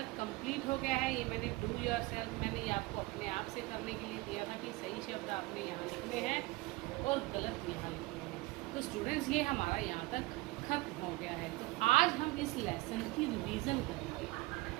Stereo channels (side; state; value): left; quieter; 21.6 dB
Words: कंप्लीट हो गया है। ये मैंने डू योर सेल्फ, मैंने ये आपको अपने आप से करने के लिए दिया था कि सही शब्द आपने यहाँ लिखने हैं और गलत यहाँ लिखने हैं। तो स्टूडेंट्स ये हमारा यहाँ तक खत्म हो गया है। तो आज हम इस लेसन की रिवीजन करेंगे,